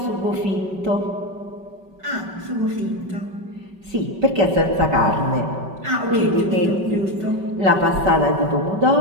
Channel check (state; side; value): late; left; 5.3 ms